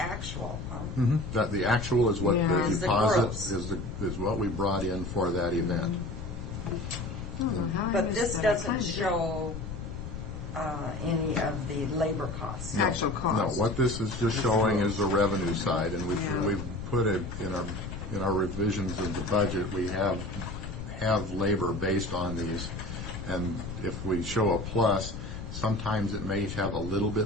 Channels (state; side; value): noise; left; rumble, 8 dB below the sound